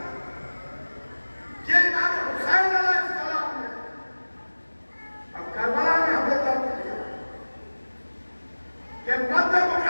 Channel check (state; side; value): inverted; both; correlation -1.00